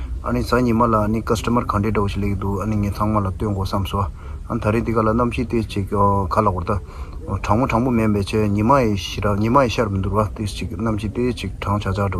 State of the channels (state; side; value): identical; both; correlation 1.00